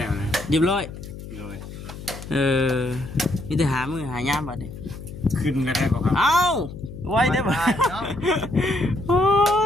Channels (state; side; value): noise; left; hum, 12 dB below the sound